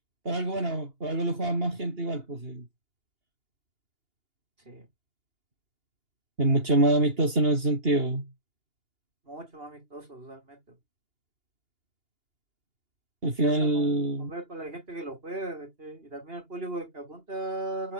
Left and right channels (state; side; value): late; left; 2.8 ms